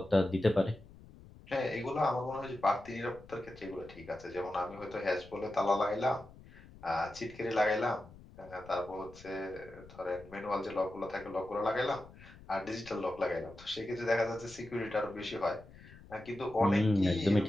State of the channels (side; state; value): left; noise; rumble, 20 dB below the sound